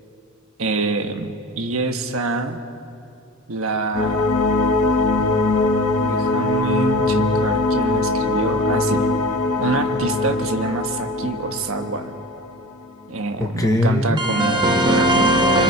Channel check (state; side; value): normal; both; correlation 0.35